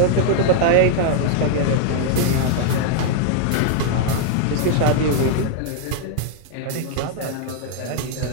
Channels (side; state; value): both; different; correlation 0.00